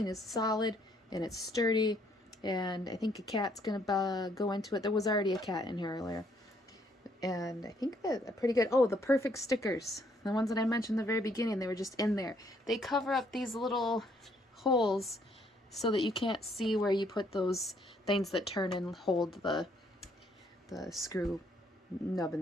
is solid and it's sturdy, and I think a cat's gonna go into it. There was already a cat in here earlier. And I think that are pretty good. Oh, the perfect stickers. The ones that I mentioned in the very beginning, they were just in there. They cover up these little holes so that you can't see where you put those things that turn and hold the screw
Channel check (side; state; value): both; normal; correlation 0.68